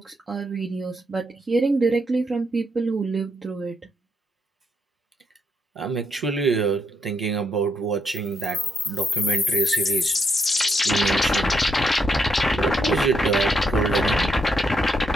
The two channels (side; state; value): both; normal; correlation 0.78